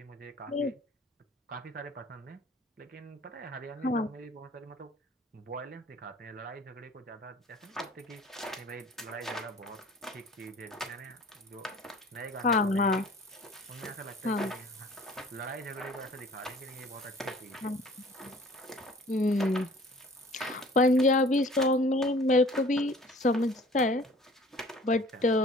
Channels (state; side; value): normal; both; correlation 0.50